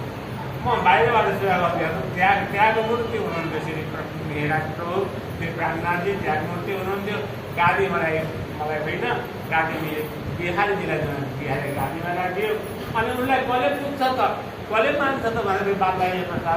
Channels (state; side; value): identical; both; correlation 1.00